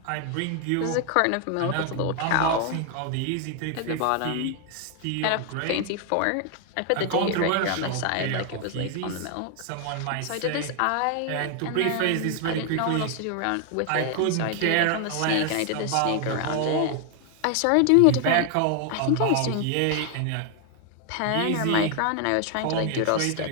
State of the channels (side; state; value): both; different; correlation 0.00